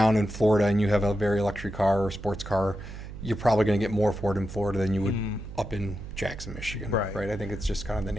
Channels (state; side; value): noise; right; hum, 11 dB below the sound